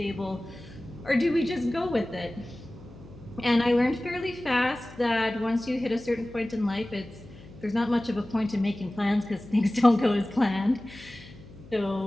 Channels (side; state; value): left; noise; hum, 19 dB below the sound